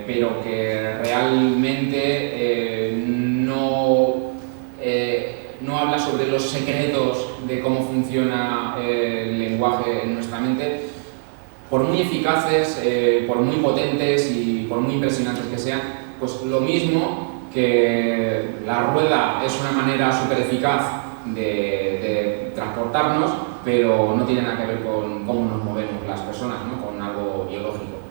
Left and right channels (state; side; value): silent; left; digital silence